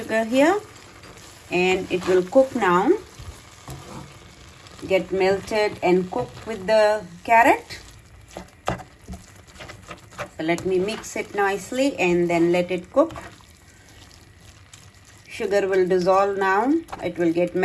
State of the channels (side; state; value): both; identical; correlation 1.00